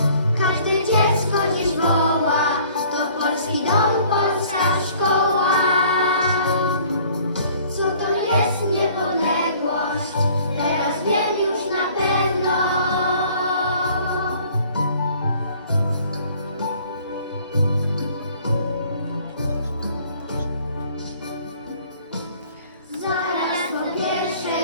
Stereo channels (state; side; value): inverted; both; correlation -0.55